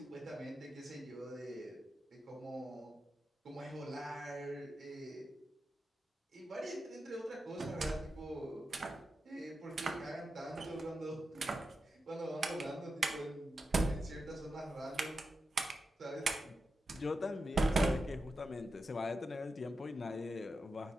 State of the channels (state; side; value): normal; both; correlation 0.89